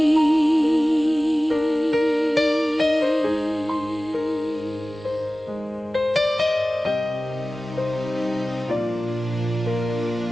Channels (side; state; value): both; normal; correlation 0.96